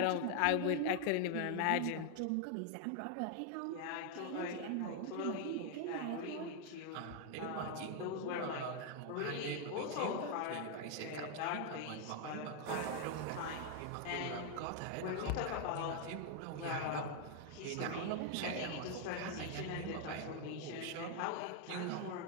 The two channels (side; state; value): both; different; correlation 0.00